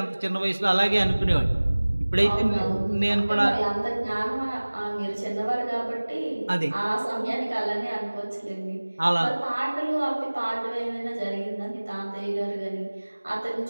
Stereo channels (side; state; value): both; inverted; correlation -1.00